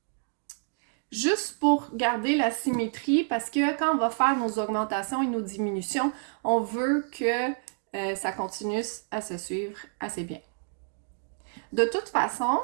Juste pour garder la symétrie, parce que quand on va faire nos augmentations et nos diminutions, on veut que ça continue à se suivre assez bien. De toute façon,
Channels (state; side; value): silent; left; 59 dB below the other